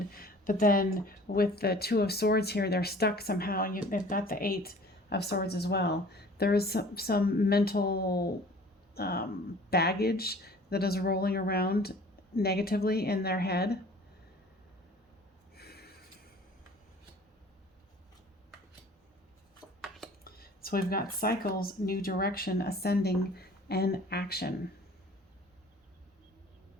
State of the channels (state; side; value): normal; both; correlation 0.48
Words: But then with the Two of Swords here, they're stuck somehow, and they've got the Eight of Swords as well. There is some mental baggage that is rolling around negatively in their head. So we've got cycles, new direction, ascending, and action.